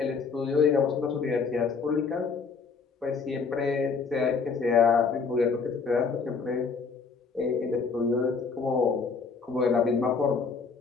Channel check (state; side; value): quieter; right; 5.1 dB